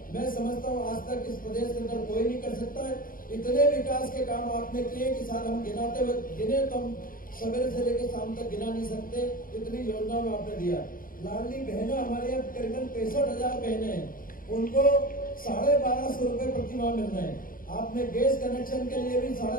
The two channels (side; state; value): right; late; 0.41 ms